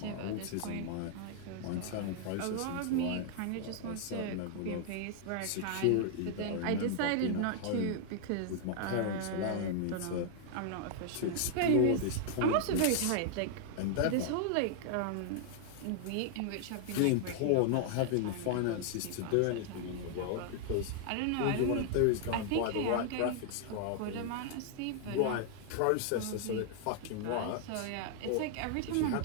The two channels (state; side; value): different; both; correlation 0.00